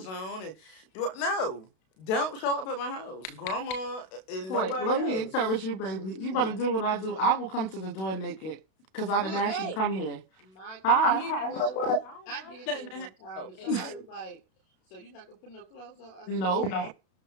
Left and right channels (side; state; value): right; late; 32 ms